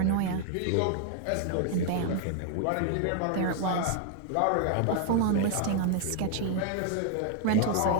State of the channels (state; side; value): different; both; correlation 0.00